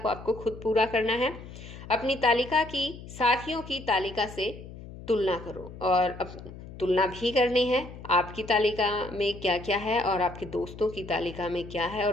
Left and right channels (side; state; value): left; noise; hum, 14 dB below the sound